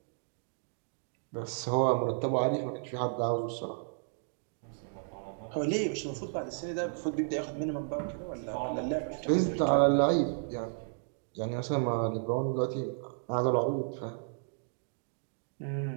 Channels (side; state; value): left; silent; digital silence